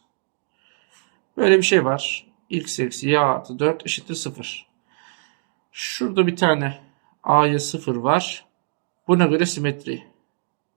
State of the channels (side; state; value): left; silent; digital silence